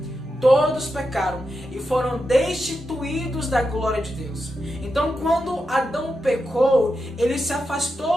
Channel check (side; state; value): both; normal; correlation 0.88